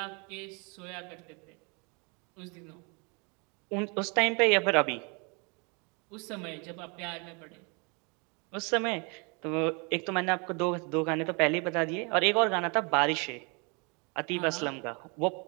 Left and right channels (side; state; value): left; quieter; 32.3 dB